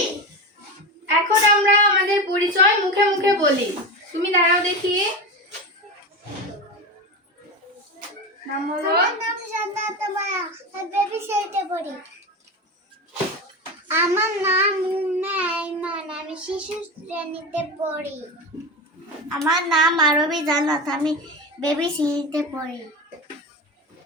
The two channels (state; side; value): normal; both; correlation 0.22